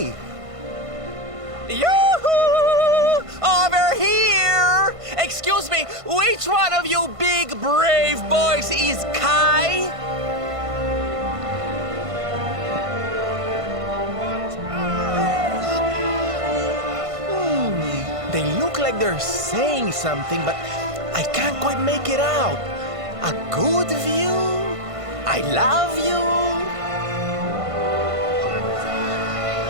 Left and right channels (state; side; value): late; left; 1.5 ms